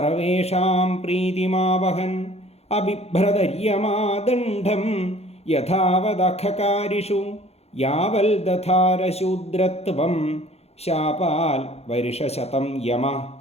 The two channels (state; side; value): late; right; 0.30 ms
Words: പ്രീതിമാവഹൻ അബിഭ്രതര്യമാദണ്ഡം യഥാവദഖകാരിഷു യാവൽ ദധാരശൂദ്രത്വം ശാപാൽ വർഷശതം യമ.